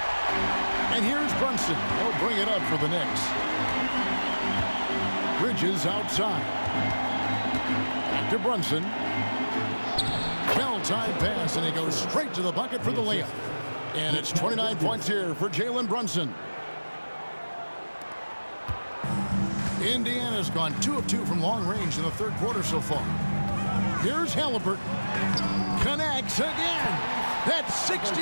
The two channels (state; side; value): inverted; both; correlation -1.00